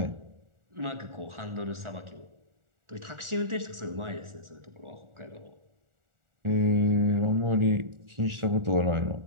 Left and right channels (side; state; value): left; late; 1.4 ms